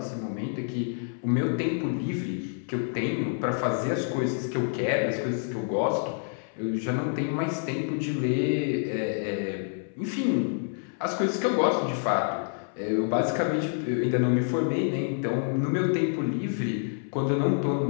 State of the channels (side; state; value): right; silent; 60 dB below the other